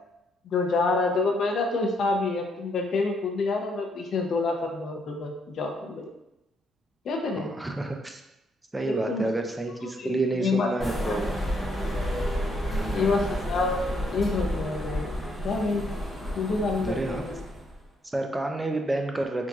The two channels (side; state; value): both; normal; correlation 0.73